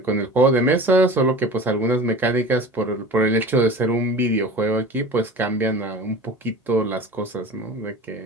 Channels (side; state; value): both; normal; correlation 0.38